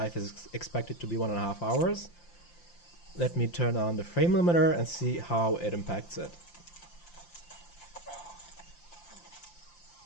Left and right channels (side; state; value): right; late; 5.8 ms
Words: is expected to be 1.5 hours. Let me turn on the frame limiter and see how it impacts it.